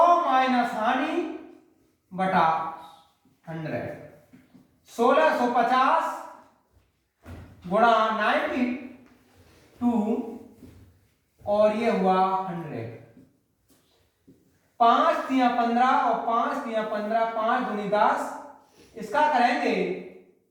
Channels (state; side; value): identical; both; correlation 1.00